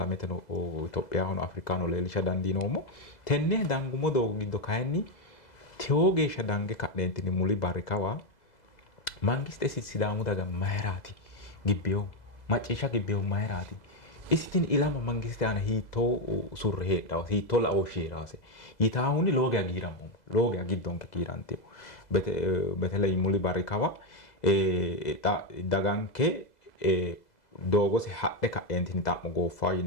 no Itophiyaho no Afrikaano leelisha dandiinoomo tenne dangumo doogo giddo kayinni tewo geeshsha dange ka'neentinni muli barrikawa mangiste sidaamu daga mayraati gibbeyo macciishsha gibbeyo mayraati isitin ilama mangiste ana hiitoo surre heedhaw hiitoo la'oo sheeraase yitaahuni looge agiiramu looge agiddonke kiirantiyo betele muli barrikawa daganke doogose hadhe ka'eentini xa'mo gooffaa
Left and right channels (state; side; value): late; right; 2.0 ms